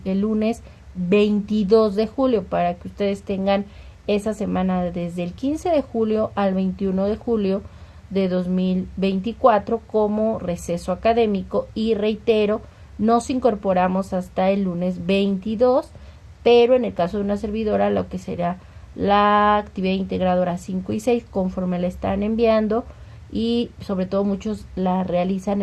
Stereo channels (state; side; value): identical; both; correlation 1.00